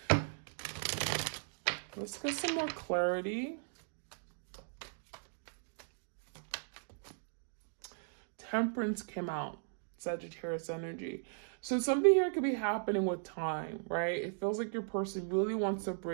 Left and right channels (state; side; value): silent; left; digital silence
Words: let's get some more clarity. Temperance came out, Sagittarius energy. So something here could be happening with time, right? It feels like your person really wants to